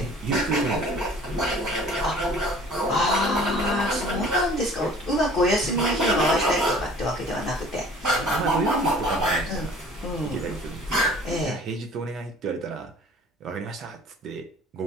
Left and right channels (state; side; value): normal; both; correlation 0.49